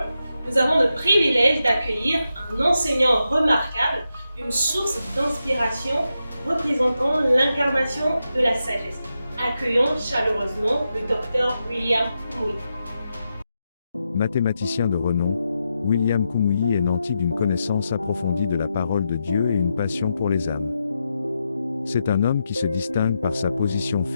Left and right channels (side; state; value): both; inverted; correlation -0.87